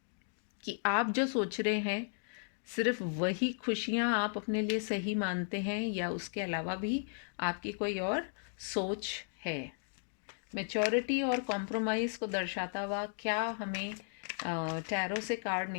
कि आप जो सोच रहे हैं सिर्फ वही खुशियाँ आप अपने लिए सही मानते हैं या उसके अलावा भी आपकी कोई और सोच है। मैच्योरिटी और कॉम्प्रोमाइज़ को दर्शाता हुआ क्या हमें टैरो से कार्ड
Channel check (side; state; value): right; silent; digital silence